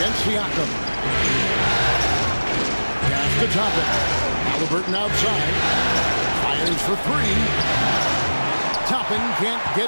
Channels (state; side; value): inverted; both; correlation -1.00